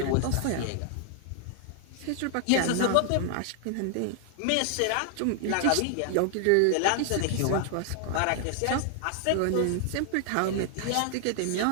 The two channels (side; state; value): both; different; correlation 0.00